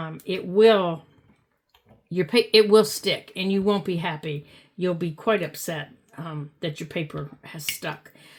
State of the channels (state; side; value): identical; both; correlation 1.00